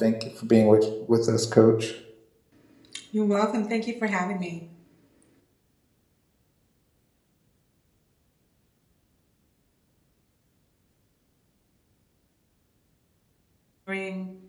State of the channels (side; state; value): both; identical; correlation 1.00